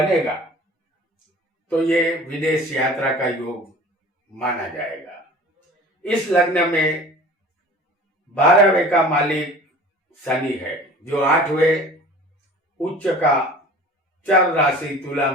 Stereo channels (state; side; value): normal; both; correlation 0.43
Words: तो ये विदेश यात्रा का योग माना जाएगा। इस लग्न में 12वें का मालिक शनि है जो 8वें उच्च का चर राशि तुला